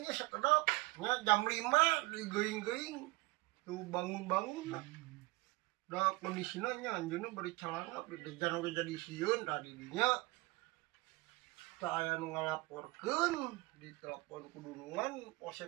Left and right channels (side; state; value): left; quieter; 22.7 dB